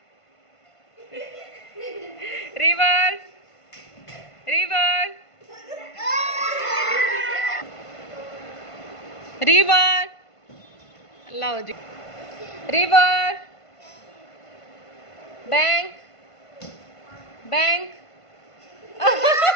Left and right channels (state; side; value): late; right; 1.5 ms